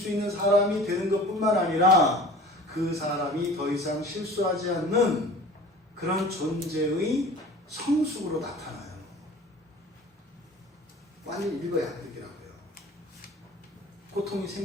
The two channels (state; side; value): normal; both; correlation 0.43